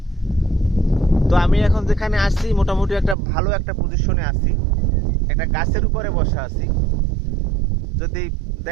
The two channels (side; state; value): left; drops out; at 3.2 s